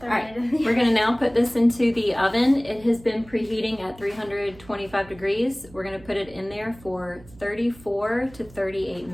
we're going to now put this into the oven. It has been preheating at 325 degrees. We're going to put it in there for 34 to 38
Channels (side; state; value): right; noise; hum, 22 dB below the sound